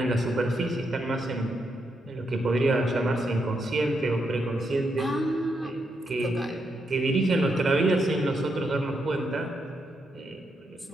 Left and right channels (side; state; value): both; normal; correlation 0.81